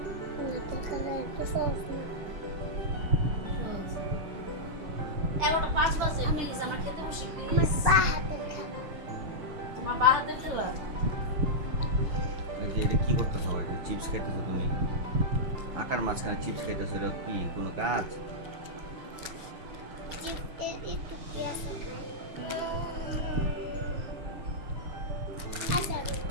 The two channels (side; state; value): left; late; 6.1 ms